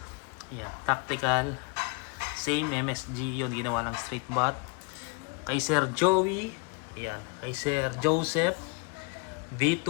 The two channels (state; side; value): quieter; right; 30.9 dB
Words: Yan, tactical, same MSG yun, ginawa lang straight bat. Kay Sir Joey, yan, kay Sir Joseph